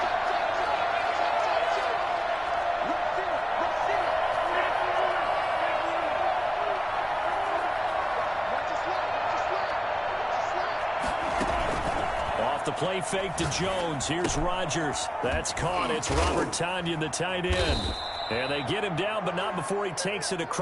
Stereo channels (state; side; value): identical; both; correlation 1.00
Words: Off the play fake to Jones. Here's Rodgers. That's caught. It's Robert Tonyan, the tight end. And they get him down, but not before he takes it